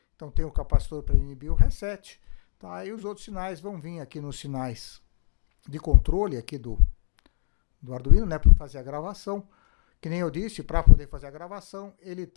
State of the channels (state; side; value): silent; right; 61 dB below the other